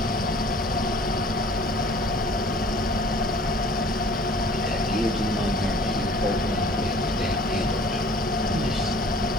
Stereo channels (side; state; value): both; normal; correlation 0.50